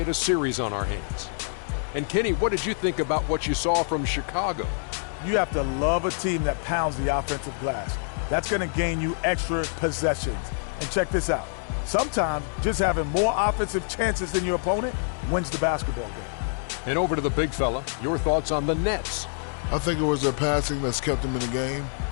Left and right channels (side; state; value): right; silent; digital silence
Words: a series on our hands. And Kenny, what did you think about what you saw from Chicago? You have to love a team that pounds the offensive glass. That's going to gain you extra possessions. And check this out. Sometimes just having more offensive chances than your opponent wins the basketball game. And over to the big fella, your thoughts on the Nets? I think it was their passing that's kept them in the game.